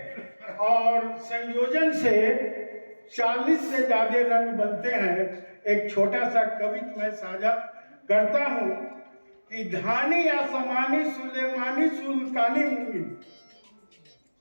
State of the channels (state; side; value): inverted; both; correlation -1.00